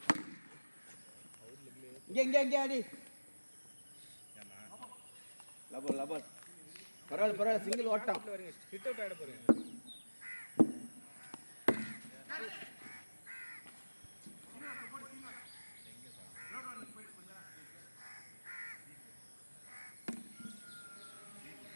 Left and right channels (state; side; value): inverted; both; correlation -1.00